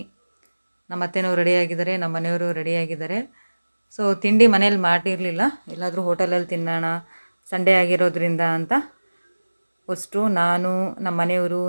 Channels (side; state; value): both; inverted; correlation -1.00